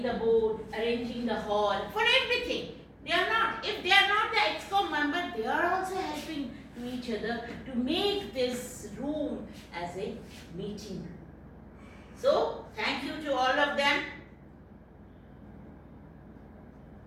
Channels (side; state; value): both; identical; correlation 1.00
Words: the board, arranging the hall, for everything. They are not, if they are not the ExCom member, they are also helping to each other to make this room as a meeting room. So, thank you to all of them.